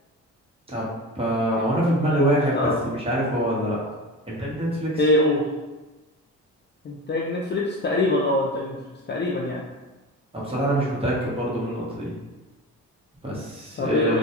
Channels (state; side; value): normal; both; correlation 0.29